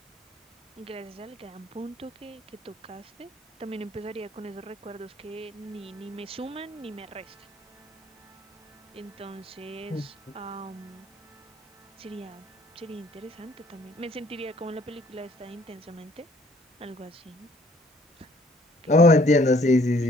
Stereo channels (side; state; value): both; normal; correlation 0.60